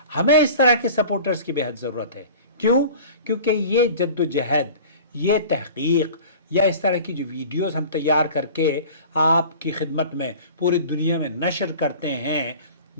ہمیں اس طرح کے سپورٹرز کی بہت ضرورت ہے۔ کیوں؟ کیونکہ یہ جد و جہد، یہ تحقیق یا اس طرح کی جو ویڈیوز ہم تیار کر کے آپ کی خدمت میں پوری دنیا میں نشر کرتے ہیں،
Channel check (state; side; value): inverted; both; correlation -0.40